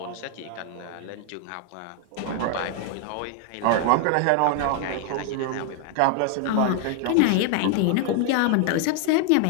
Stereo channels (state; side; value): different; both; correlation 0.00